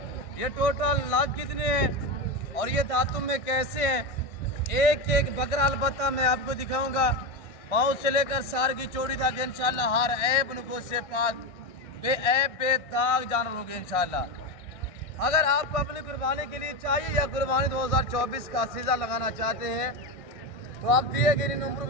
ये टोटल लाख कितने हैं और ये दांतों में कैसे हैं, एक एक बकरा अलबत्ता मैं आपको दिखाऊंगा। पाँव से लेकर सार की चोटी तक इंशाल्लाह हर ऐब नुको से पाक बेऐब बेदाग जानवर होंगे इंशाल्लाह। अगर आपको अपनी कुर्बानी के लिए चाहिए या कुर्बानी 2024 का सीज़ा लगाना चाहते हैं तो आप दिए गए नंबर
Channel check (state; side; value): late; right; 1.6 ms